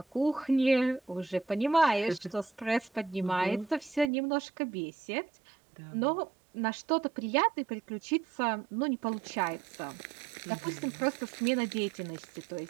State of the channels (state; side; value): drops out; left; at 4.1 s